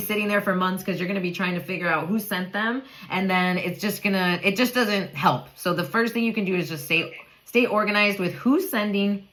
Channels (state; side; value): identical; both; correlation 1.00